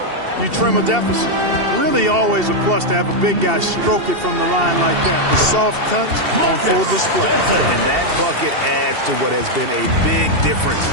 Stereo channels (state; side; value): late; left; 2.7 ms